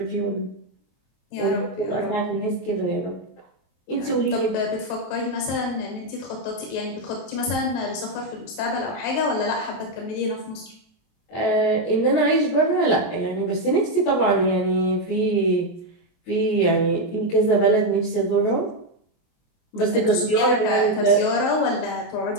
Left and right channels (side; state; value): right; late; 23 ms